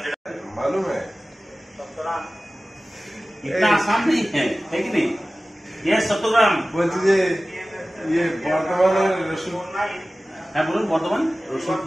मालूम है इतना आसान नहीं है कि नहीं? ये 100 ग्राम। বলছি যে ইয়ে বর্ধমানের রসুন, হ্যাঁ বলুন। বর্ধমান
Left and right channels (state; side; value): normal; both; correlation 0.97